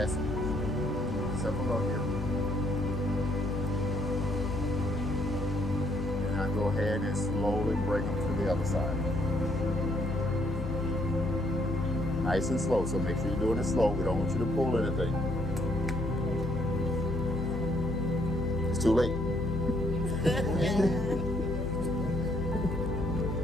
Yourself up here. And now go ahead and slowly bring them to the other side. Nice and slow, so make sure you're doing it slow. We don't want you to pull anything. It's too late.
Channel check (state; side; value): noise; left; hum, 4 dB below the sound